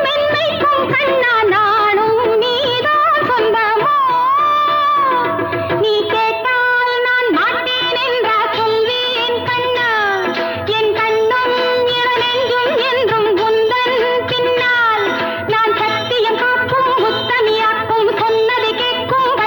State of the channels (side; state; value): both; identical; correlation 1.00